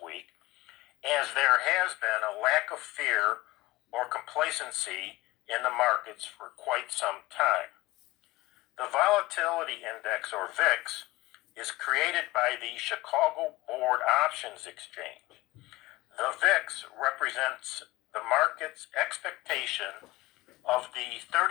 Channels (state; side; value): quieter; right; 19.8 dB